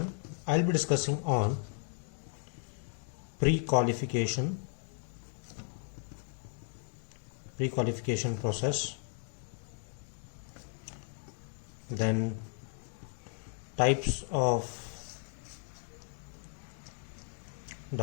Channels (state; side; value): silent; right; 54 dB below the other